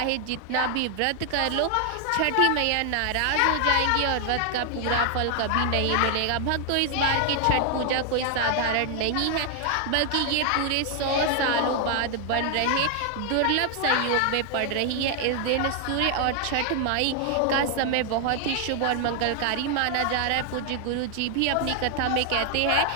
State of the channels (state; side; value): different; both; correlation 0.00